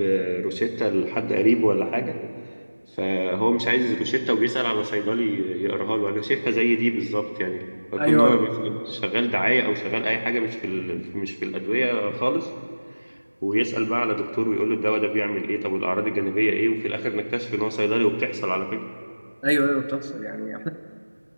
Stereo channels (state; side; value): inverted; both; correlation -1.00